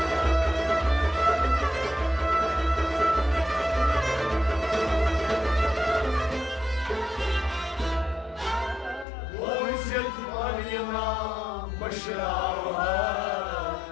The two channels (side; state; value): right; drops out; at 9.1 s